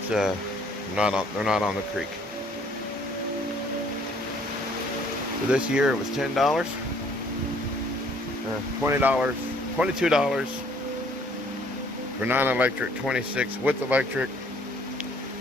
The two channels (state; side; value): normal; both; correlation 0.60